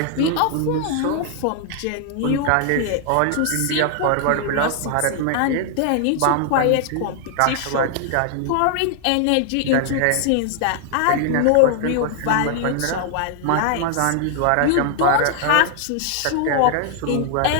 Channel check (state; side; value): different; both; correlation 0.00